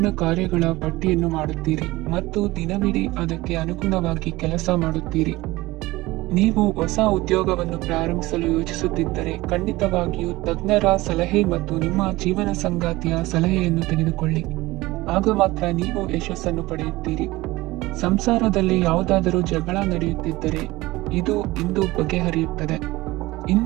ಕಾರ್ಯಗಳ ಪಟ್ಟಿಯನ್ನು ಮಾಡುತ್ತೀರಿ ಮತ್ತು ದಿನವಿಡೀ ಅದಕ್ಕೆ ಅನುಗುಣವಾಗಿ ಕೆಲಸ ಮಾಡುತ್ತೀರಿ. ನೀವು ಹೊಸ ಉದ್ಯೋಗವನ್ನು ಪ್ರಾರಂಭಿಸಲು ಯೋಚಿಸುತ್ತಿದ್ದರೆ ಖಂಡಿತವಾಗಿಯೂ ತಜ್ಞರ ಸಲಹೆ ಮತ್ತು ನಿಮ್ಮ ಜೀವನ ಸಂಗಾತಿಯ ಸಲಹೆಯನ್ನು ತೆಗೆದುಕೊಳ್ಳಿ. ಆಗ ಮಾತ್ರ ನೀವು ಯಶಸ್ಸನ್ನು ಪಡೆಯುತ್ತೀರಿ. ಸಂಸಾರದಲ್ಲಿ ಯಾವುದಾದರೂ ಜಗಳ ನಡೆಯುತ್ತಿದ್ದರೆ ಇದು ಇಂದು ಬಗೆಹರಿಯುತ್ತದೆ.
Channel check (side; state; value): left; quieter; 19.6 dB